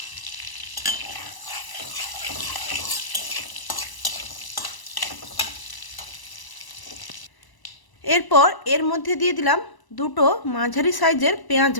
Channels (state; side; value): late; right; 1.0 ms